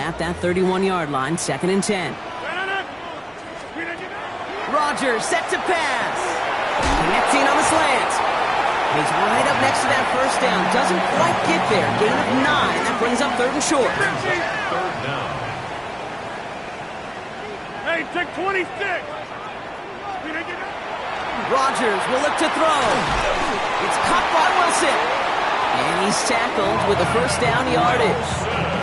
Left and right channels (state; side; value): identical; both; correlation 1.00